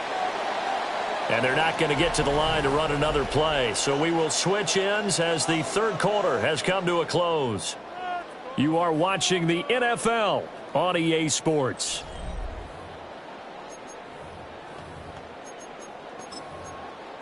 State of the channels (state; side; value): identical; both; correlation 1.00